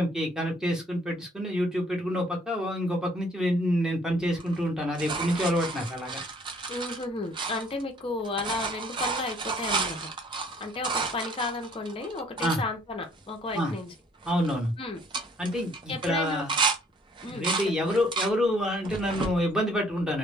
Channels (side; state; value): both; normal; correlation 0.60